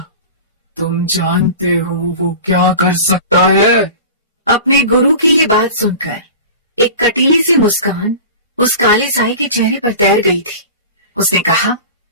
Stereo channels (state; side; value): inverted; both; correlation -0.35